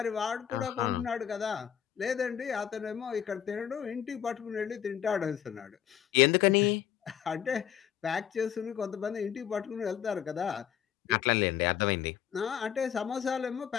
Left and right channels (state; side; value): quieter; right; 9.4 dB